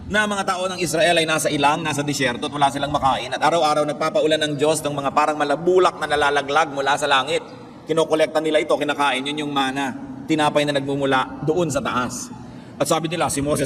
Na mga tao ng Israel ay nasa ilang, nasa disyerto at wala silang makain. At araw-araw nagpapaulan ng Diyos ng mga parang malabulak na nalalaglag mula sa langit. Kinokolekta nila ito, kinakain, yun yung manna. Tinapay na nagmumula doon sa taas. At sabi nila, si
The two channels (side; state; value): both; identical; correlation 1.00